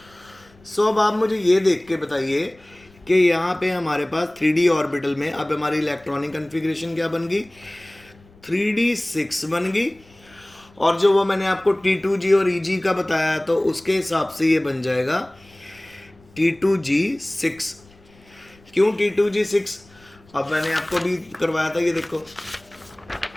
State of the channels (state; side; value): noise; left; rumble, 28 dB below the sound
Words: सो अब आप मुझे ये देख के बताइए कि यहाँ पे हमारे पास 3D ऑर्बिटल में अब हमारी इलेक्ट्रॉनिक कन्फिग्रेशन क्या बन गई, 3D 6 बन गई, और जो वो मैंने आपको T2G और EG का बताया तो उसके हिसाब से ये बन जाएगा T2G 6। क्यों T2G 6? अब मैंने आपको भी करवाया था, ये देखो